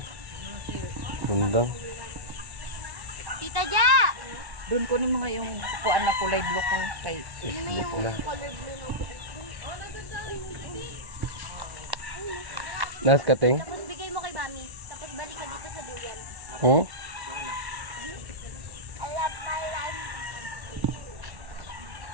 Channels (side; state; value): left; late; 1.1 ms